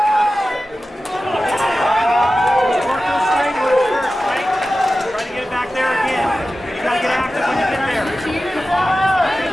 to get it back there again. You gotta get active when you get there. Lift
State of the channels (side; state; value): both; normal; correlation 0.94